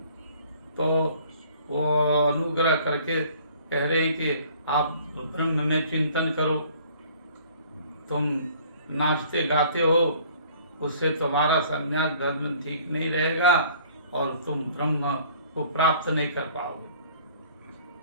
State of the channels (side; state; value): both; inverted; correlation -0.54